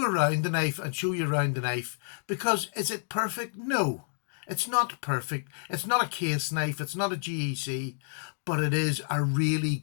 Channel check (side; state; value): right; silent; digital silence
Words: around the knife and show you around the knife, because is it perfect? No. It's not perfect. It's not a case knife. It's not a GEC, but it is a really